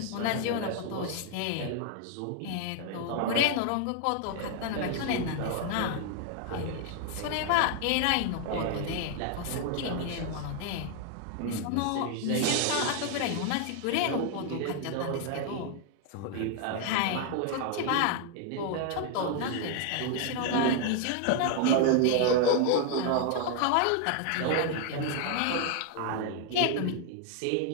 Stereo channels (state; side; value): different; both; correlation 0.00